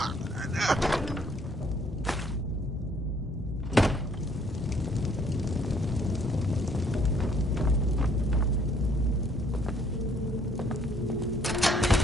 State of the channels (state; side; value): normal; both; correlation 0.63